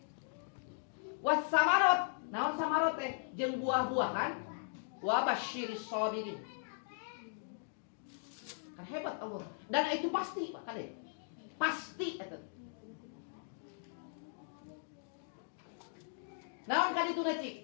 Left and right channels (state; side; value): silent; right; digital silence